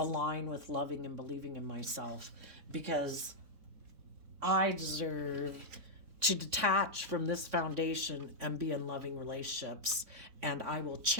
with loving and believing in myself, because I deserve to detach from this foundation and be in loving relationships. And I will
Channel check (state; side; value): late; left; 3.6 ms